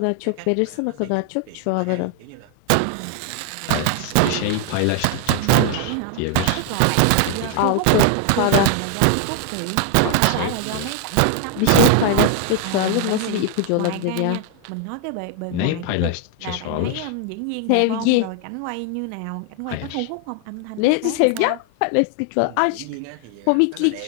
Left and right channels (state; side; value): different; both; correlation 0.00